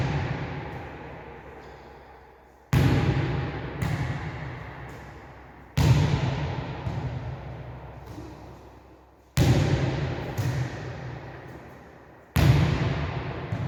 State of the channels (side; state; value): both; identical; correlation 1.00